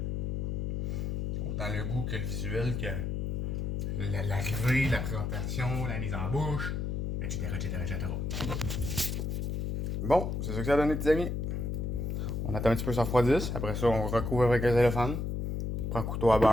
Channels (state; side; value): noise; left; hum, 1 dB below the sound